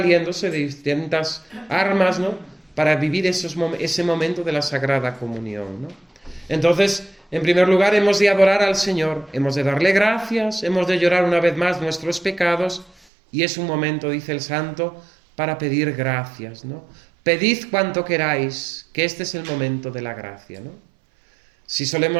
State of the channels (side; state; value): left; drops out; at 12.9 s